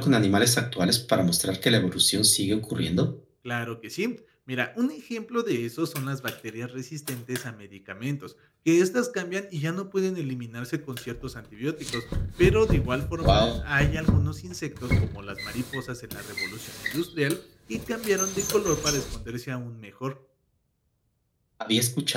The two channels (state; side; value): identical; both; correlation 1.00